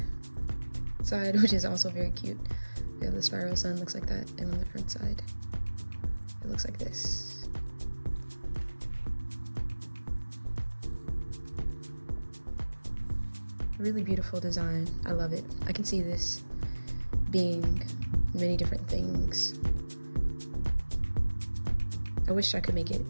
side, which is also very cute, we have the spiral sun, looks like that, and on the front side, it looks like this. Really beautiful design. I love it. I can see this being many different things. I wish I could make it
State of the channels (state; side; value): inverted; both; correlation -1.00